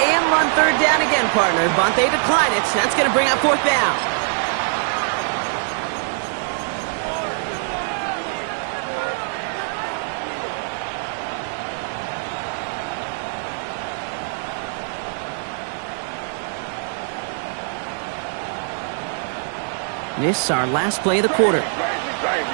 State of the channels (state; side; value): silent; left; 64 dB below the other